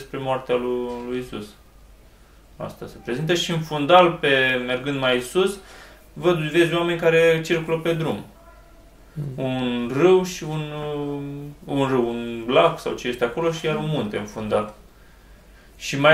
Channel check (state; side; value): identical; both; correlation 1.00